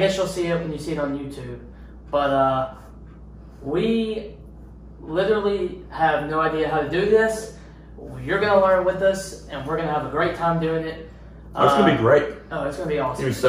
you'll see it when you see it on YouTube. But, we literally have no idea how to do this. You're going to learn with us, and we're going to have a great time doing it. Oh, it's going to be great. Oh, it's going to be awesome. You're going to be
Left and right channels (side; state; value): both; identical; correlation 1.00